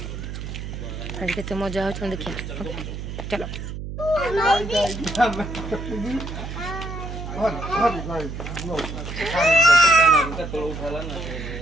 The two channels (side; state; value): right; noise; hum, 7 dB below the sound